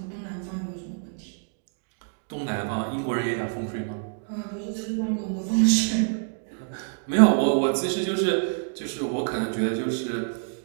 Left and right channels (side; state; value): left; silent; digital silence